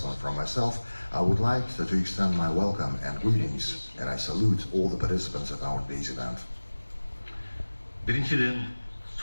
from myself, I would like to extend my welcome and greetings, and I salute all the participants of our day's event. Биринчиден,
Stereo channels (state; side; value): inverted; both; correlation -1.00